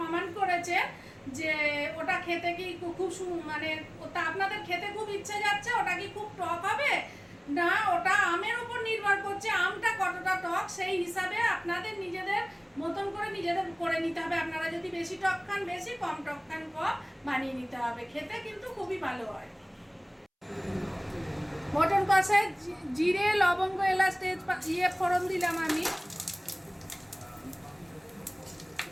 কমেন্ট করেছেন যে ওটা খেতে কি খুব মানে ওটা আপনাদের খেতে খুব ইচ্ছে যাচ্ছে, ওটা কি খুব টক হবে না? ওটা আমের উপর নির্ভর করছে, আমটা কতটা টক সেই হিসাবে আপনাদের নিজেদের মতন করে নিজেদের করে নিতে হবে। আপনারা যদি বেশি টক খান বেশি, কম টক খান কম, বানিয়ে নিতে হবে। খেতে কিন্তু খুবই ভালো হয়। মটন কষায় জিরে, লবঙ্গ, এলাচ, তেজপাতা ফোড়ন দিলাম আমি।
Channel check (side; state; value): both; identical; correlation 1.00